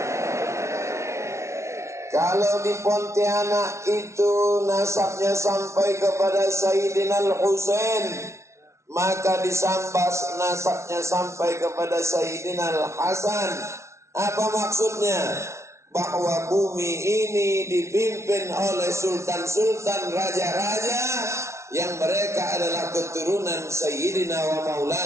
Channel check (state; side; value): late; left; 0.13 ms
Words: Kalau di Pontianak itu nasabnya sampai kepada Sayyidina Al-Husain, maka di Sambas nasabnya sampai kepada Sayyidina Al-Hasan. Apa maksudnya? Bahwa bumi ini dipimpin oleh sultan-sultan, raja-raja yang mereka adalah keturunan Sayyidina wa